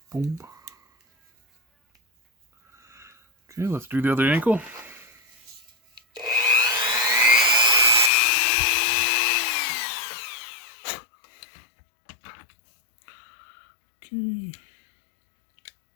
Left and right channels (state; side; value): drops out; right; at 8.1 s